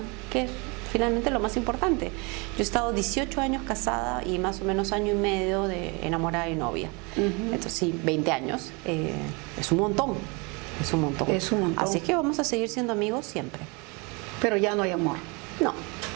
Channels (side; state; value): left; quieter; 29.4 dB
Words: que es finalmente lo más importante. Yo he estado 18 años casada y más o menos año y medio de enamorada y novia. Entonces sí, 20 años es un montón, es un montón. Es un montón. Así que vamos a seguir siendo amigos siempre. Pero ya no hay amor. No.